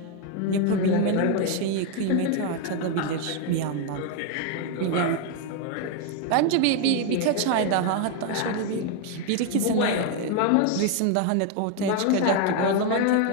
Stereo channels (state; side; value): different; both; correlation 0.01